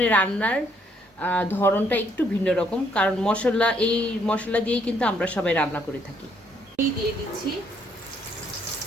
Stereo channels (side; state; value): both; normal; correlation 0.69